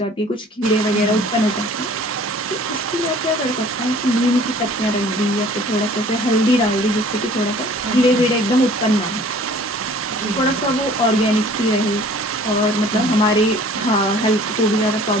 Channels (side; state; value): both; normal; correlation 0.51